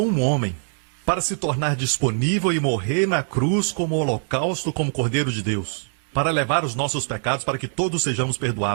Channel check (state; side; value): silent; left; digital silence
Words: um homem para se tornar disponível e morrer na cruz como holocausto, como Cordeiro de Deus, para levar os nossos pecados, para que todos sejamos